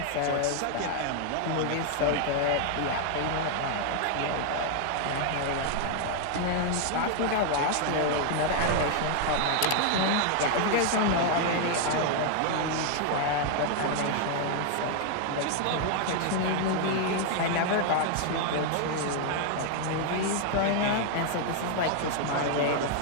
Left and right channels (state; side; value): different; both; correlation 0.00